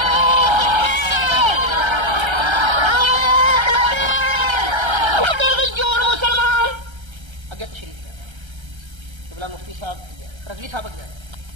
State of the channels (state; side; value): late; left; 1.3 ms